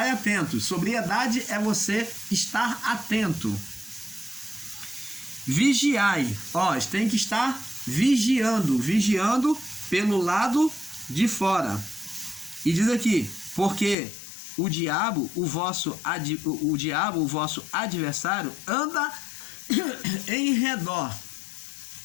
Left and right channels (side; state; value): right; drops out; at 14.0 s